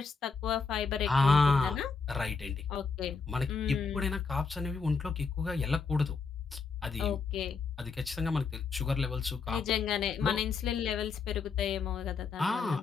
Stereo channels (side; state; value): right; quieter; 5.0 dB